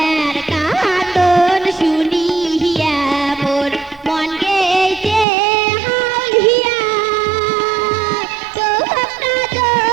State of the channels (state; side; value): drops out; left; at 5.2 s